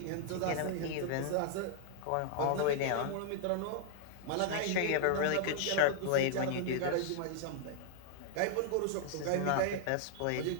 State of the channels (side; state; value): both; different; correlation -0.01